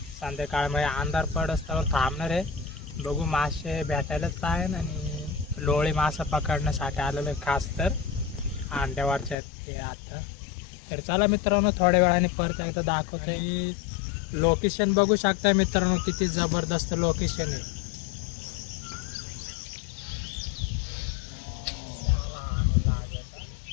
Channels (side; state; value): right; drops out; at 9.3 s